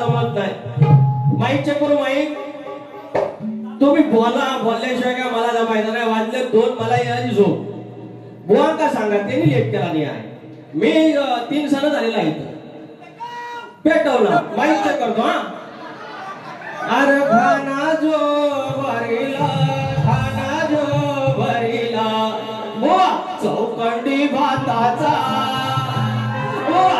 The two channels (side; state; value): both; identical; correlation 1.00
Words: नाही. माईक चेक करू. माईक तुम्ही बोलल्याशिवाय काय मला जमायचं नाही. वाजले 2 मला यायची झोप. बुवा का सांगा त्यांनी लेट केला नाही आहे. मी 3 सण झालेला आहे. पेटवला. माईक चेक करतो हा. अरे खाना जो भरीला, खाना जो भरीला बुवा चौकंडी भाताचा,